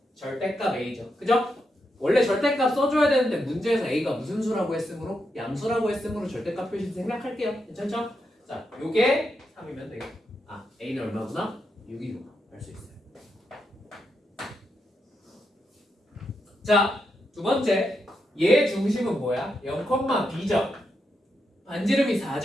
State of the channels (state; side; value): normal; both; correlation 0.84